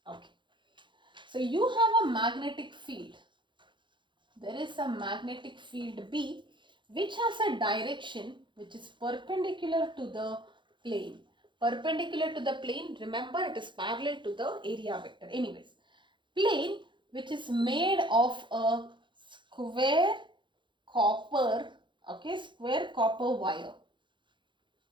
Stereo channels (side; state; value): left; late; 0.23 ms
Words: Okay. So you have a magnetic field. There is a magnetic field B which has a direction which is perpendicular to the plane. Perpendicular to the plane, remember it is parallel to the area vector. Anyways, plane which is made of a square copper, okay, square copper wire.